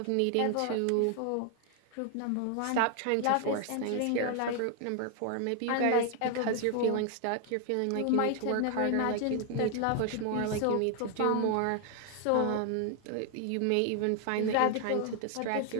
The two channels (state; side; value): different; both; correlation 0.00